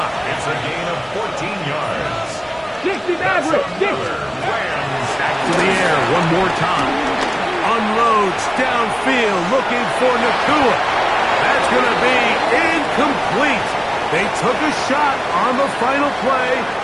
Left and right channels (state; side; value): identical; both; correlation 1.00